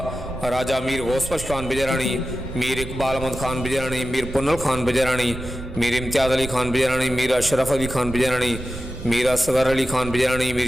राजा मीर गौसबख्श खान बिजरानी, मीर इकबाल अहमद खान बिजरानी, मीर पुन्नल खान बिजरानी, मीर इम्तियाज़ अली खान बिजरानी, मीर अशरफ अली खान बिजरानी, मीर असगर अली खान बिजरानी,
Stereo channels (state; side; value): noise; right; rumble, 11 dB below the sound